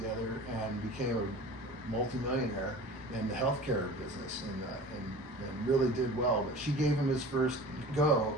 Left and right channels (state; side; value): normal; both; correlation 0.39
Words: and became a multimillionaire in the healthcare business, and really did well. But she gave him his first go,